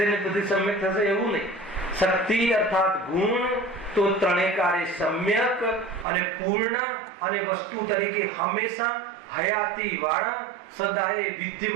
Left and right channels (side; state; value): left; drops out; at 6.1 s